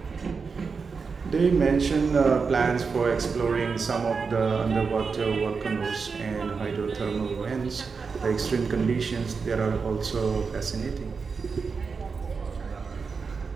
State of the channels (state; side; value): quieter; left; 5.1 dB